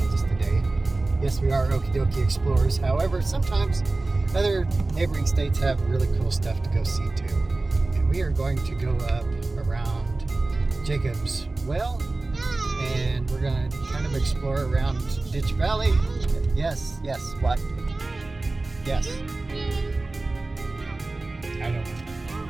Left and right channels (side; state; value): left; quieter; 3.2 dB